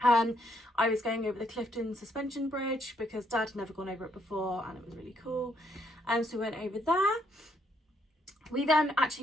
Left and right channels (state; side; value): normal; both; correlation 0.72